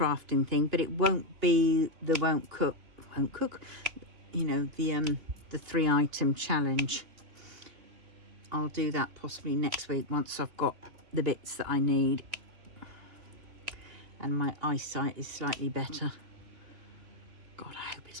thing, but it won't be the won't cook, you know, the 3-item challenge. I'll do that possibly next week once I've got the bits that I need and my eyesight is slightly better. God, I hope it's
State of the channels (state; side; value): late; left; 3.0 ms